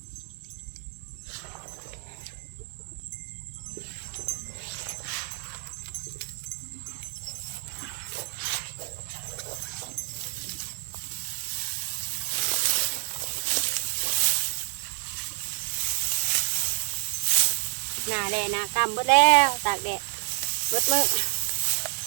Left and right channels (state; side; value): silent; left; 55 dB below the other